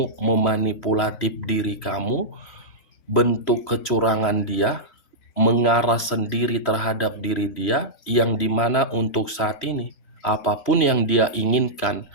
memanipulatif diri kamu, bentuk kecurangan dia, mengarah sendiri terhadap diri dia, yang dimana untuk saat ini, apapun yang dia inginkan,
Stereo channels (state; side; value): late; right; 3.1 ms